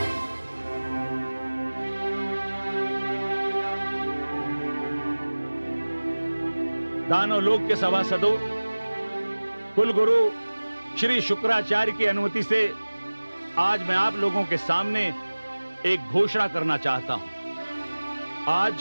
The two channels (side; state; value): both; inverted; correlation -1.00